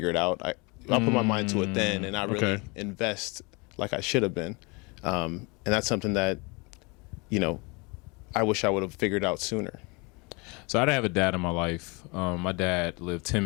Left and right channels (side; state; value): right; quieter; 28.7 dB